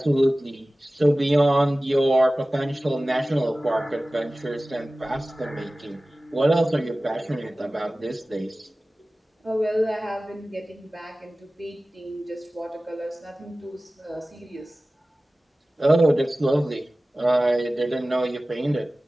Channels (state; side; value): normal; both; correlation 0.97